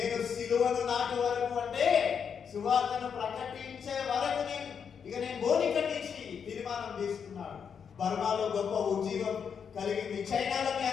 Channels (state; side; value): quieter; right; 7.0 dB